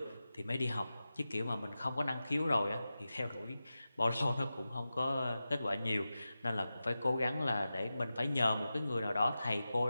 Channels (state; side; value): inverted; both; correlation -0.93